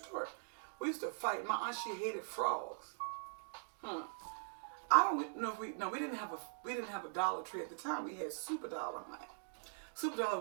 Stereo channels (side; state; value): left; silent; digital silence